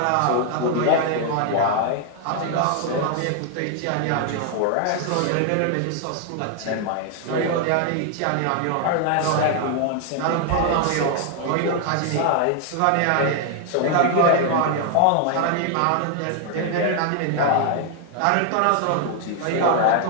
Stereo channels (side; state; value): both; different; correlation 0.00